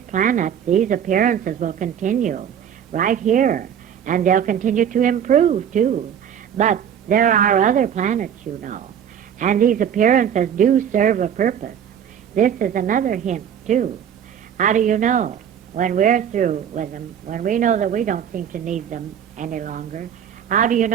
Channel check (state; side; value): quieter; left; 8.8 dB